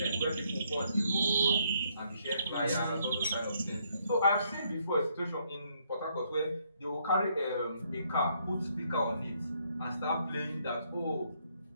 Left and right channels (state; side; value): inverted; both; correlation -0.71